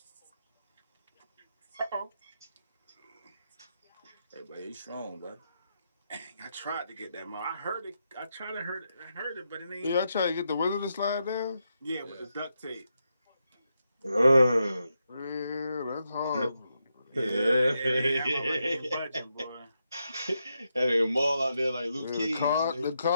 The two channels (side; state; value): both; inverted; correlation -0.84